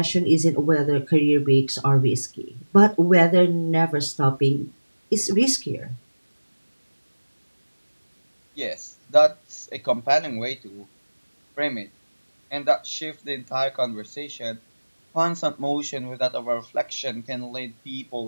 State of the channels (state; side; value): inverted; both; correlation -1.00